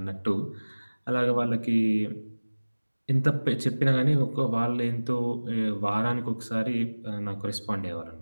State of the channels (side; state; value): both; inverted; correlation -1.00